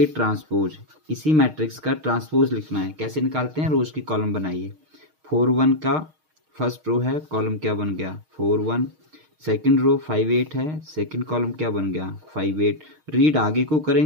ट्रांसपोज, इसी मैट्रिक्स का ट्रांसपोज लिखना है। कैसे निकालते हैं, रोज की कॉलम बनाइए। 4 1 का फर्स्ट रो है, कॉलम क्या बन गया 4 1, सेकंड रो 5 8 है, सेकंड कॉलम क्या बन गया 5 8। रीड आगे को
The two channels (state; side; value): late; left; 6.5 ms